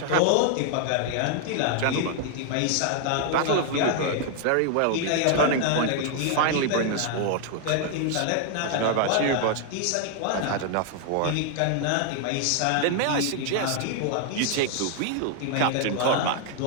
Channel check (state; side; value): different; both; correlation 0.00